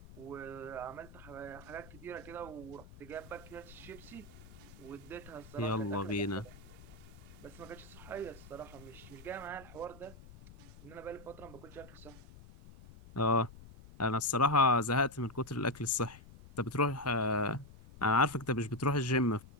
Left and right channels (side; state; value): left; noise; rumble, 18 dB below the sound